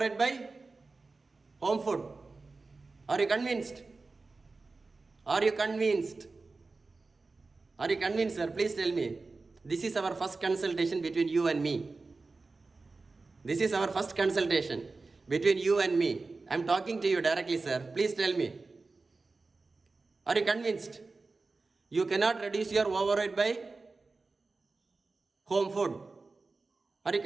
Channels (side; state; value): left; quieter; 3.8 dB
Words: by home food. Are you convinced? Are you convinced? Are you convinced, sir? Please tell me. This is our first consultation between you and me. This is our first consultation between you and me. I am talking to you directly, sir. Please tell me. Are you convinced? You cannot reduce your overweight by home food. Are you